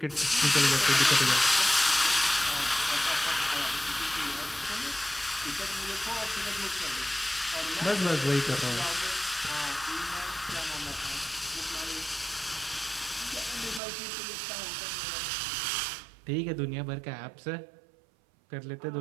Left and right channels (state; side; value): drops out; left; at 13.8 s